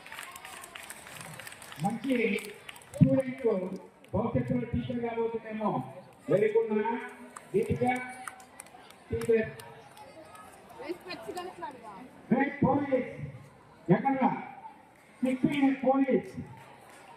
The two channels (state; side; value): identical; both; correlation 1.00